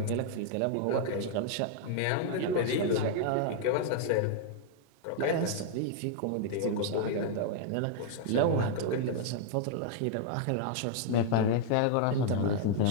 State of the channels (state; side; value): different; both; correlation 0.00